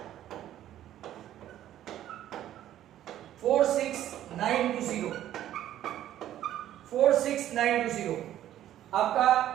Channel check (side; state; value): left; quieter; 12.2 dB